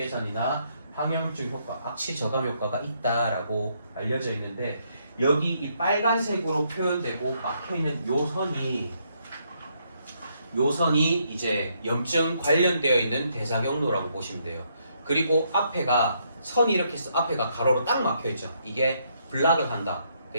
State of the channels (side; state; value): both; inverted; correlation -0.74